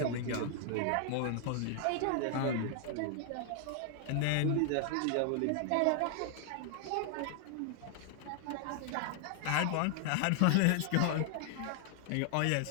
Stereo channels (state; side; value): different; both; correlation 0.00